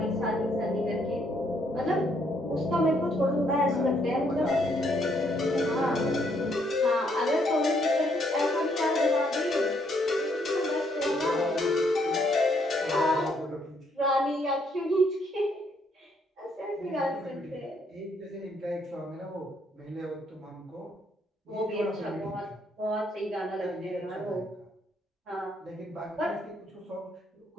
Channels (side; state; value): both; normal; correlation 0.71